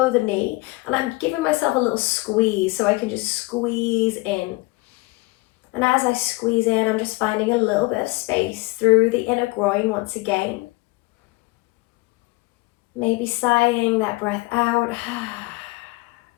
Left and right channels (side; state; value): right; quieter; 23.0 dB